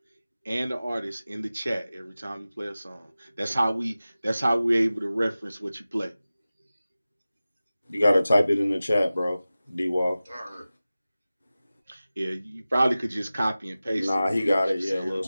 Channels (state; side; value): inverted; both; correlation -0.96